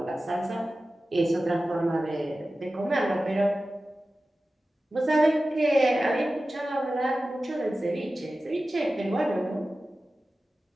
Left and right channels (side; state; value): both; normal; correlation 0.95